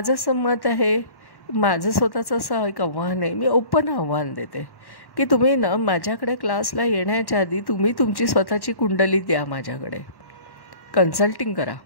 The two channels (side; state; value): right; late; 1.1 ms